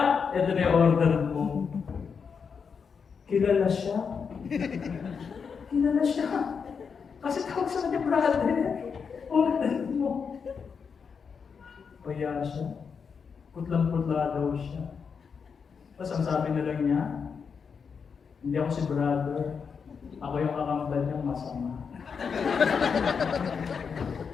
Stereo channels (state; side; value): quieter; right; 6.1 dB